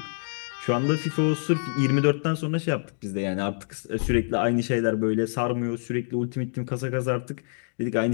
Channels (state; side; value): silent; right; digital silence